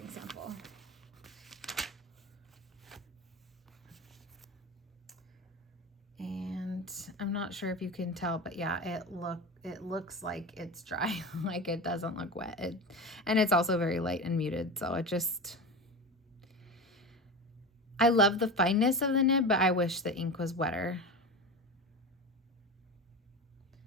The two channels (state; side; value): normal; both; correlation 0.26